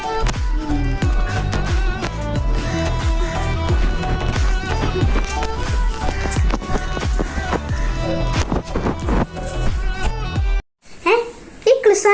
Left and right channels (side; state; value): both; identical; correlation 1.00